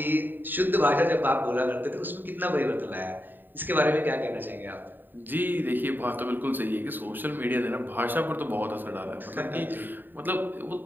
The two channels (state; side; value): late; left; 0.092 ms